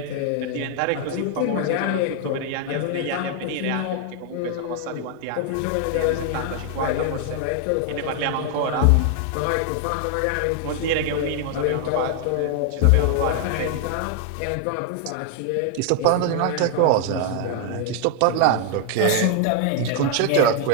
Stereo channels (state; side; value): different; both; correlation 0.00